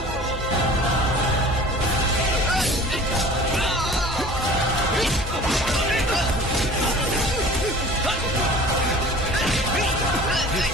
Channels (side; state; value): both; normal; correlation 0.44